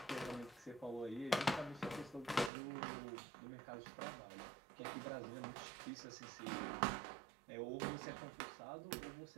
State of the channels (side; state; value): left; drops out; at 2.5 s